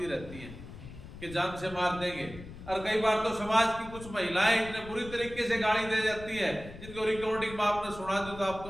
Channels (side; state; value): left; noise; rumble, 14 dB below the sound